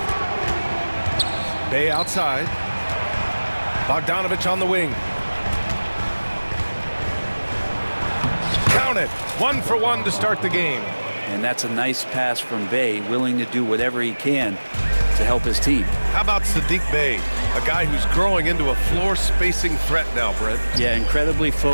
Bay outside. Bogdanovic on the wing. Count it. 1 for 1 to start the game. And that's a nice pass from Bay, willing to do whatever he can to help his team. How about Sadiq Bey, a guy who's growing into a floor spacing threat now, Brent? Yeah, incredibly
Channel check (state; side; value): inverted; both; correlation -1.00